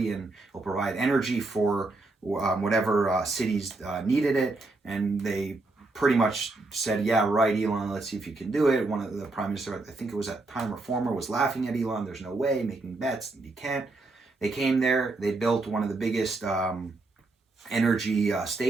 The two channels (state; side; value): quieter; left; 3.2 dB